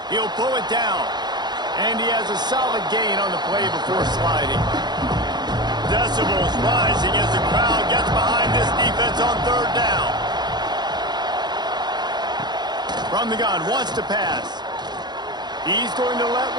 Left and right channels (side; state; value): left; late; 0.21 ms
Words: He'll pull it down. And he has a solid gain on the play before sliding. Decibels rising as the crowd gets behind this defense on 3rd down. From the gun, wants to pass. He's going to let